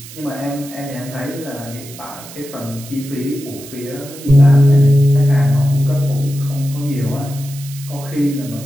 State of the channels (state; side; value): noise; right; hiss, 16 dB below the sound